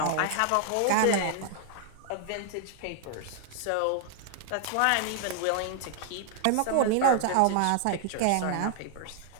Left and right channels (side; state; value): both; different; correlation 0.00